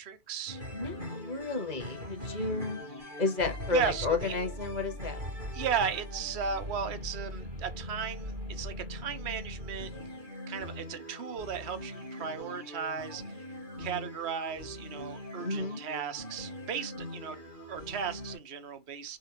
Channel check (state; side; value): late; left; 2.3 ms